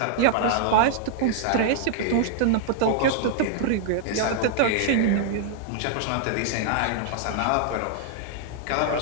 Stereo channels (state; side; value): different; both; correlation -0.01